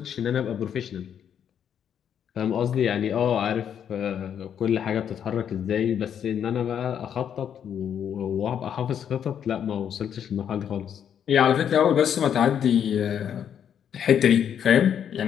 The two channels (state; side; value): quieter; right; 8.8 dB